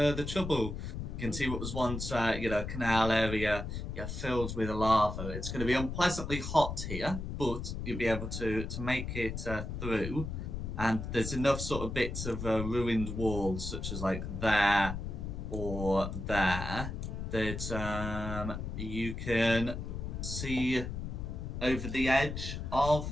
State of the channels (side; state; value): left; noise; rumble, 5 dB below the sound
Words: trouble. You can see what was once a canal area filled with lava. It's going to be unpleasantly hot here, but you'll be able to make it through. And there's enough sort of bits of ruined walls, such as like there or there, that you can see over the edge